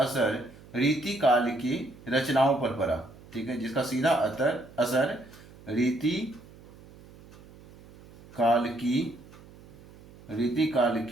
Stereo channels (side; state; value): right; noise; hum, 21 dB below the sound